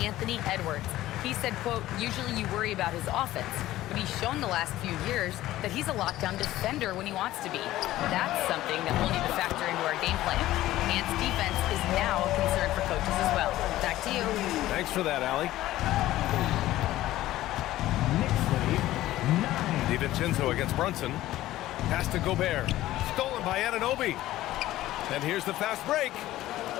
Edwards. He said, quote, usually you worry about his offense, but he's shown the last few years that he's a lockdown defender when he wants to be. That's something that we'll need to factor into our game plan. Ant's defense is now a concern for coaches as well. Back to you. Thanks for that, Allie. DiVincenzo against Brunson. Pass to Gobert. Stolen by Anunoby. And here's the fast break.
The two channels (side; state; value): right; quieter; 15.3 dB